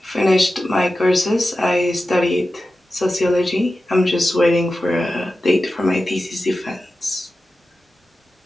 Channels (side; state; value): both; normal; correlation 0.93